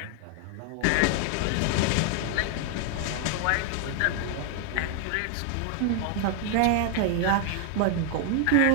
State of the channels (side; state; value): both; different; correlation 0.00